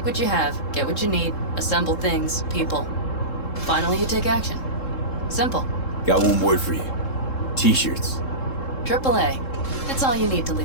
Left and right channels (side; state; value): right; late; 3.7 ms